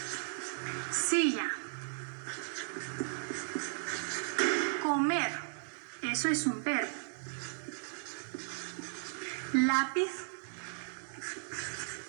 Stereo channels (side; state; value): left; silent; digital silence